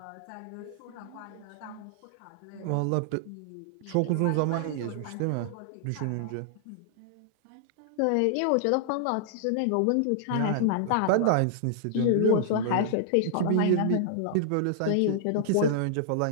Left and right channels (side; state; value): both; different; correlation -0.01